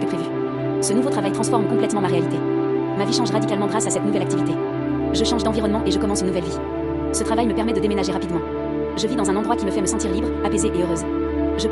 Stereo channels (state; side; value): identical; both; correlation 1.00